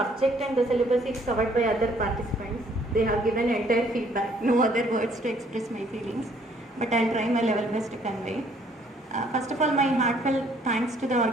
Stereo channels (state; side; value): normal; both; correlation 0.63